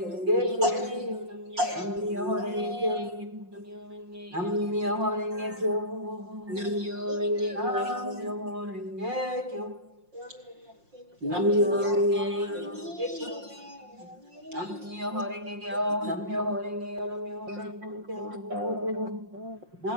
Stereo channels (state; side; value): late; left; 5.6 ms